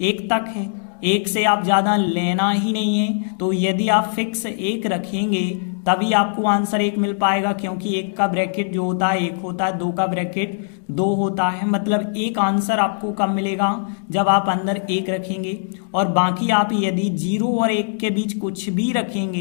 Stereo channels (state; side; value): silent; right; digital silence